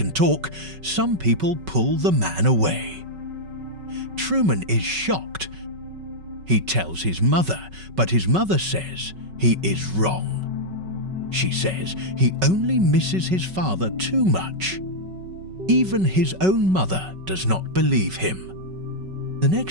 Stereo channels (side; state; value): left; late; 5.3 ms